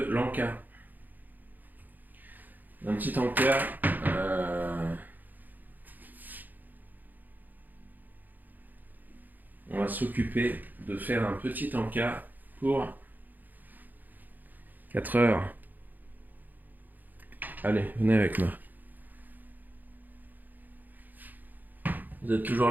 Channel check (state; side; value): late; left; 0.085 ms